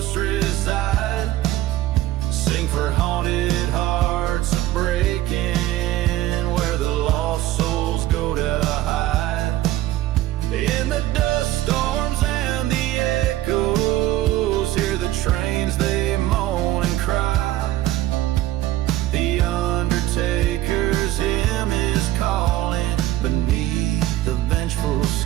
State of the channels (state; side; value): quieter; left; 14.9 dB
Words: reside. Sing for haunted hearts breaking, where the lost souls go to hide. In the dust storms and the echoes, hear the trains, they moan and cry. The undertaker's hymn is calling beneath the vengeful